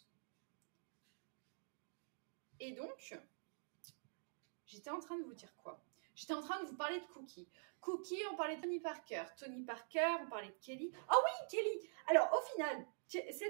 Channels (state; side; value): silent; left; digital silence